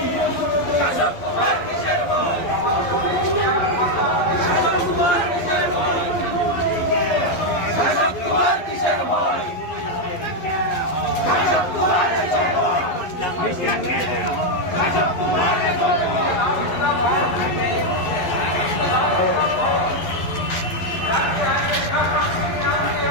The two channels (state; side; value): late; right; 11 ms